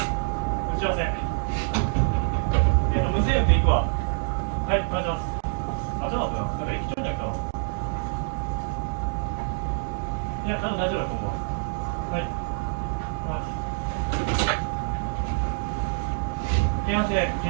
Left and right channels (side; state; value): left; silent; digital silence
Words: 打ち合わせ。無制約で行くわ。はい、お願いします。あ、ちょっと待ってな。なんか駅長に来たわ。いや、多分大丈夫だと思うわ。はい。京阪市で